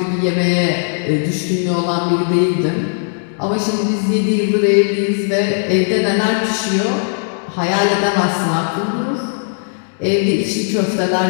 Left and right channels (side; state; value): right; silent; digital silence